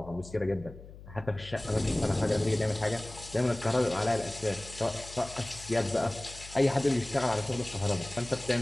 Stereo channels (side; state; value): left; noise; hum, 16 dB below the sound